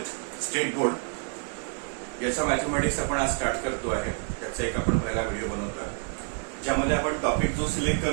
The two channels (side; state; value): left; quieter; 38.7 dB